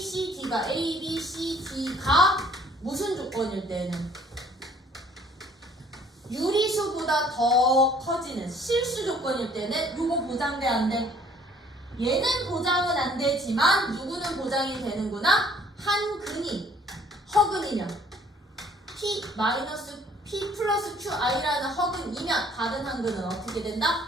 D가 무슨 조건일 때는? 유리수보다 더 커지는 실수 조건일 때는 요거 보장돼 안 돼? 얘는 보장은 안 되지만 누구는 보장이 되는구나? 한 근이 허근이면 P 플러스 QI라는 허근이면 다른 한 근은 어떻게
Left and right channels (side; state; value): both; normal; correlation 0.58